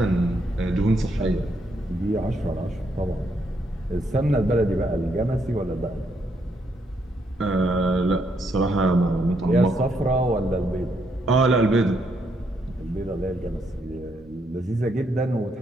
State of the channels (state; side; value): normal; both; correlation 0.75